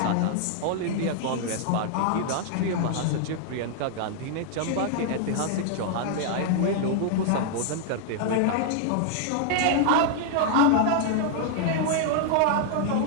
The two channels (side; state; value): both; different; correlation 0.00